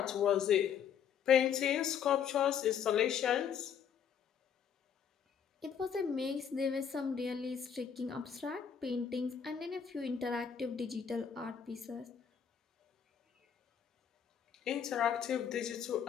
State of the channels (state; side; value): quieter; right; 7.9 dB